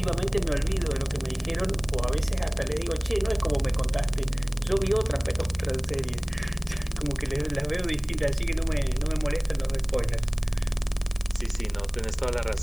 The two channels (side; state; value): left; noise; hiss, 23 dB below the sound